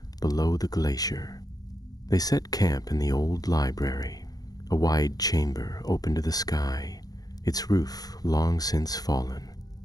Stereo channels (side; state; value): right; late; 0.18 ms